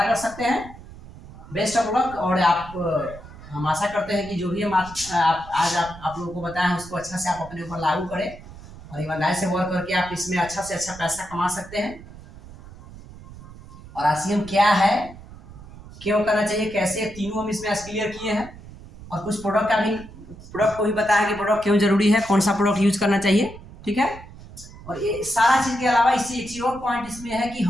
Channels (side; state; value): right; noise; rumble, 17 dB below the sound